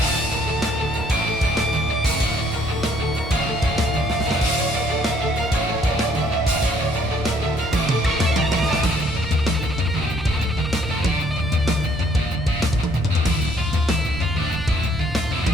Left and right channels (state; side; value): noise; right; rumble, 14 dB below the sound